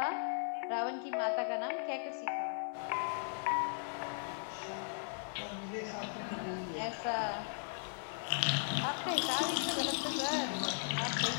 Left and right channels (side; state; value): right; silent; 53 dB below the other